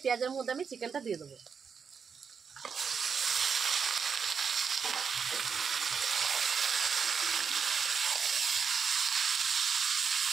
পেঁয়াজের মধ্যে আমি চিকেনটা দিয়ে দেবো।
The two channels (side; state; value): left; quieter; 6.3 dB